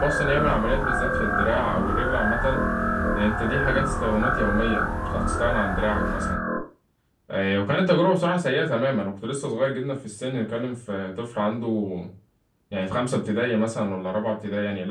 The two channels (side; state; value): both; identical; correlation 1.00